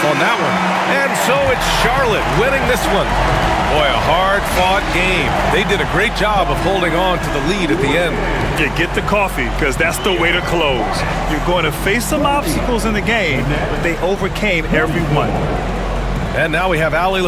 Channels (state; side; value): identical; both; correlation 1.00